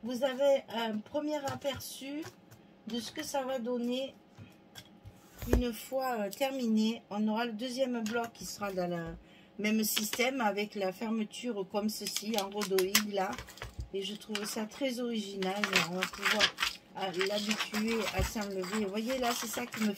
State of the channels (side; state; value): both; identical; correlation 1.00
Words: Vous avez un premier aperçu de ce que ça va donner une fois terminé. On aura le deuxième bloc qui sera dans Même système avec la fermeture comme ceci, en rhodoïde là. Et je trouve ça très original. On va pouvoir l'habituer à s'enlever. Vous voyez là, c'est ça qui me